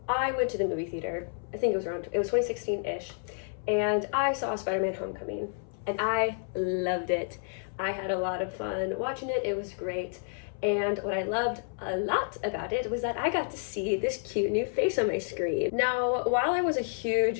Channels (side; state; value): right; silent; 58 dB below the other